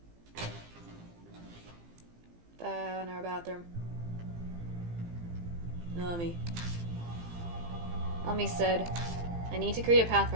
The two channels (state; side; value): late; left; 18 ms